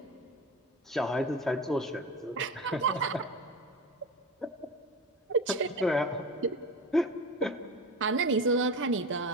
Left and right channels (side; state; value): both; normal; correlation 0.28